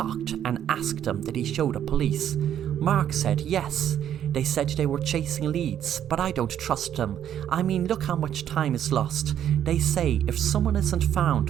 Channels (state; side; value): quieter; left; 10.1 dB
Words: and asked him did he show the police. Mark said yes. They said they were chasing leads, but I don't trust them. I mean, look how much time is lost. They say if someone isn't